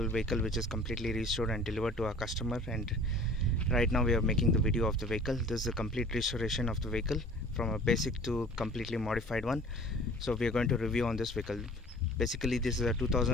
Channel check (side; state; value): both; normal; correlation 0.47